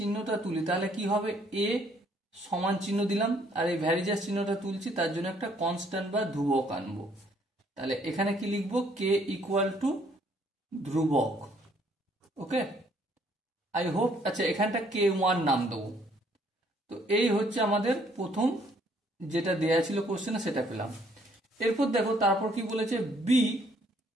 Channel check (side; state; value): both; normal; correlation 0.65